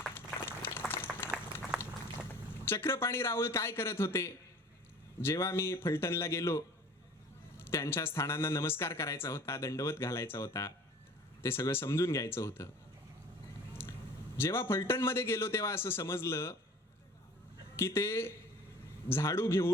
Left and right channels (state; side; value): normal; both; correlation 0.46